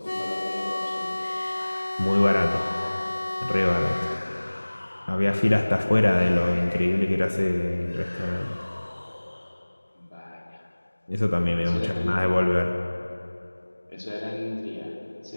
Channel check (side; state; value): both; inverted; correlation -1.00